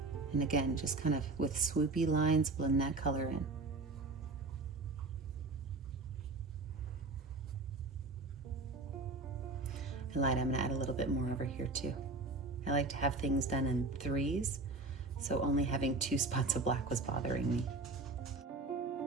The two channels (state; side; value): quieter; left; 3.4 dB